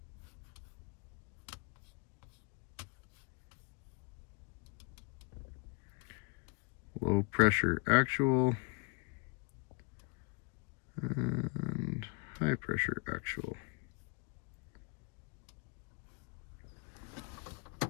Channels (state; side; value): quieter; right; 30.8 dB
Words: Low pressure actual and high pressure actual.